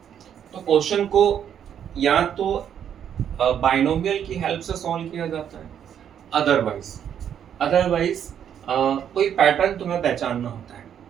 तो क्वेश्चन को या तो बाइनोमियल की हेल्प से सॉल्व किया जाता है, अदरवाइज कोई पैटर्न तुम्हें पहचानना होता है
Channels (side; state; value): left; quieter; 9.1 dB